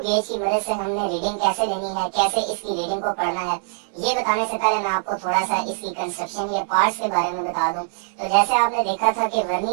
गेज की मदद से हमने रीडिंग कैसे लेनी है, कैसे इसकी रीडिंग को पढ़ना है, ये बताने से पहले मैं आपको थोड़ा सा इसकी कंस्ट्रक्शन या पार्ट्स के बारे में बता दूं। तो जैसे आपने देखा था कि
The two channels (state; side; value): silent; left; 64 dB below the other